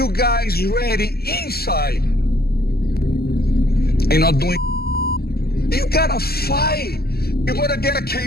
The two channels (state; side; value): late; right; 0.45 ms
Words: guys ready inside. Ain't not doing. You gotta fight. You gotta get a